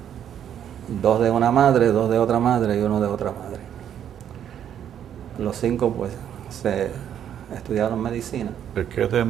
2 de una madre, 2 de otra madre y 1 de otra madre. Los 5 pues se estudiaron medicina. ¿El que es de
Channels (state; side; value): quieter; left; 9.6 dB